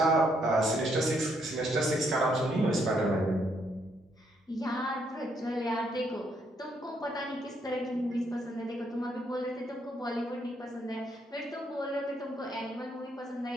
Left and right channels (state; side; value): normal; both; correlation 0.73